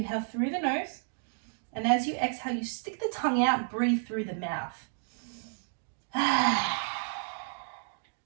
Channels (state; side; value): silent; left; digital silence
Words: through the nose, and as you exhale, you stick the tongue out, breathe through the mouth.